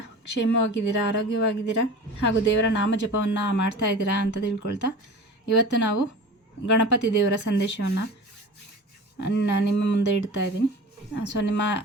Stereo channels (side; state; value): both; normal; correlation 0.36